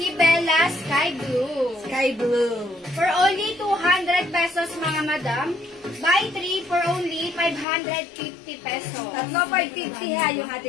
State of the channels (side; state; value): right; drops out; at 7.7 s